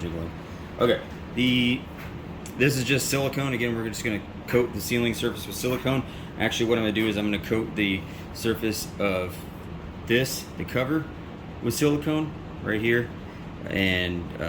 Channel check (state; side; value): identical; both; correlation 1.00